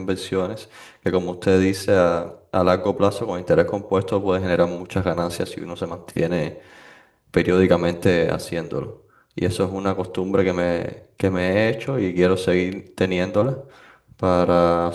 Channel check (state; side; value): identical; both; correlation 1.00